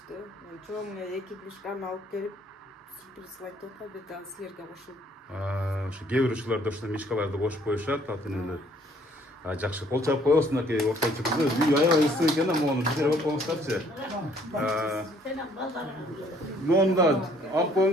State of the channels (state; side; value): normal; both; correlation 0.61